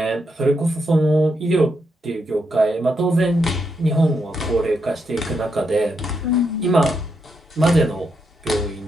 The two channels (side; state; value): both; normal; correlation 0.81